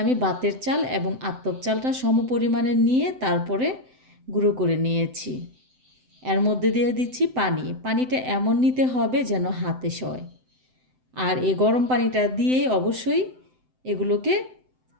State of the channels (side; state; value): left; late; 7.8 ms